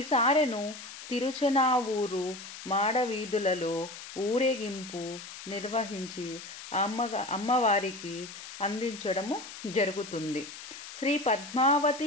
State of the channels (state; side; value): noise; left; hiss, 13 dB below the sound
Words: సారెను తిరుచనావూరు మాడవీధులలో ఊరేగింపు నిర్వహించి అమ్మవారికి అందించడము జరుగుతుంది. శ్రీ